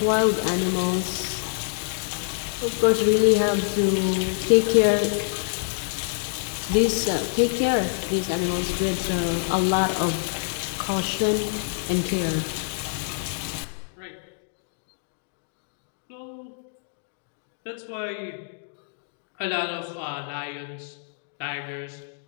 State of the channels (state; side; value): silent; right; digital silence